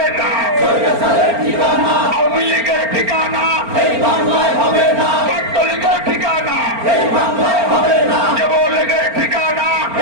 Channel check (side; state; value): left; late; 4.4 ms